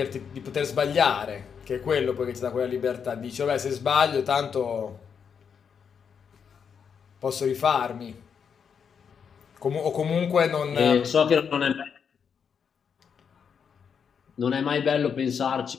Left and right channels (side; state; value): right; quieter; 6.9 dB